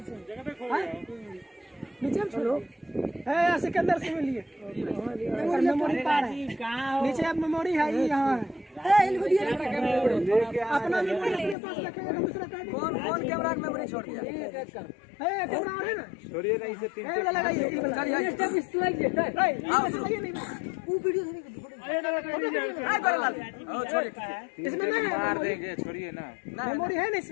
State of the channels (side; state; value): right; drops out; at 11.6 s